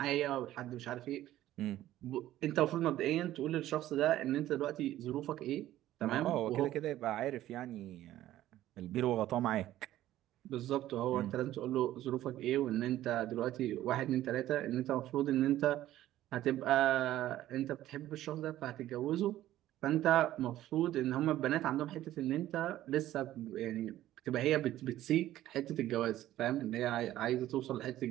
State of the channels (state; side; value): quieter; left; 13.9 dB